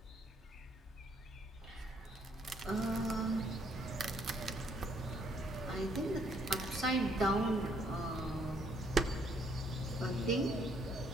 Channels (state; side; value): normal; both; correlation 0.68